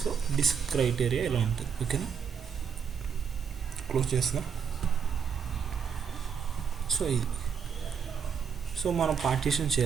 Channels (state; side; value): quieter; left; 6.9 dB